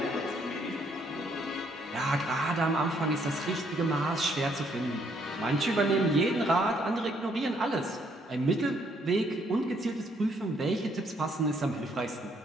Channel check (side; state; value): both; normal; correlation 0.69